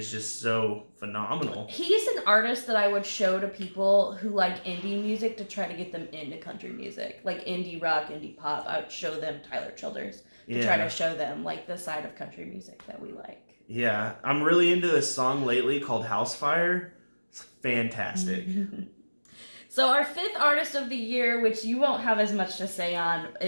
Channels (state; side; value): inverted; both; correlation -1.00